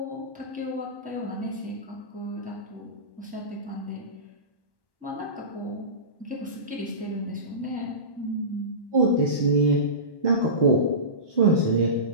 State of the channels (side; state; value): right; late; 1.1 ms